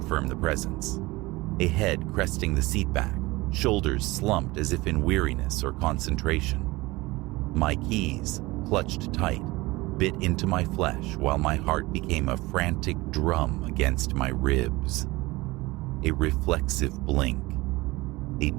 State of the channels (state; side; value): quieter; left; 21.2 dB